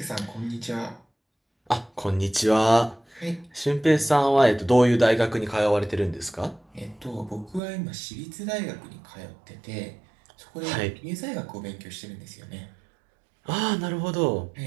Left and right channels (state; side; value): drops out; left; at 7.6 s